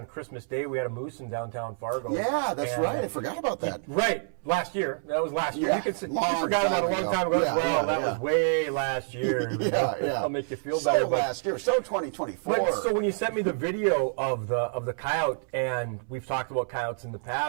Christmas Day, we had a moose in downtown Fargo. Yeah, that's right. I forgot about that. Right. Last year. That was last year. Yeah, You forgot about it a long time ago as well. That was way last year. Yeah. I'll make you feel better. Last year. So 2024. But, so when you sent me the video of the coyote, and we've talked about coyotes in the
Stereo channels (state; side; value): silent; left; 60 dB below the other